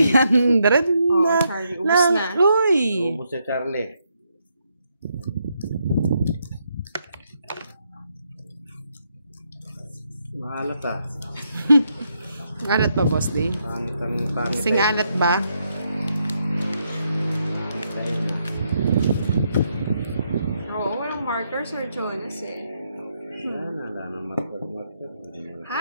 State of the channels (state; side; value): inverted; both; correlation -0.78